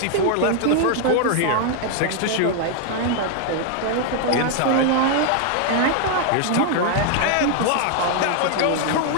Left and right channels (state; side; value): different; both; correlation 0.00